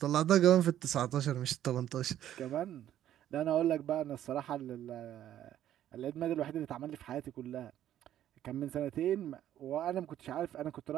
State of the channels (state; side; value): quieter; left; 11.6 dB